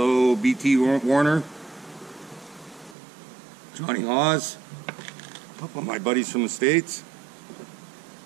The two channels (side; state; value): left; drops out; at 3.0 s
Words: BT Warner, Johnny Hawes, a couple of my buddies from the States.